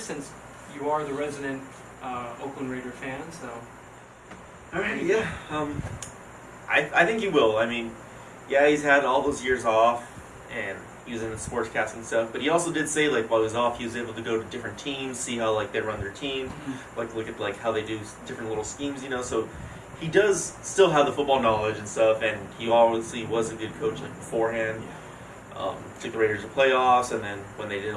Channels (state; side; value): identical; both; correlation 1.00